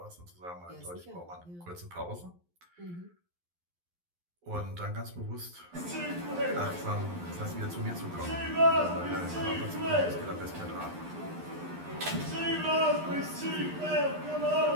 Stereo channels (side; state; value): left; late; 11 ms